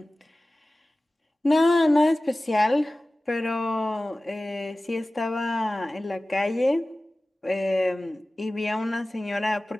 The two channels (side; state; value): both; normal; correlation 0.97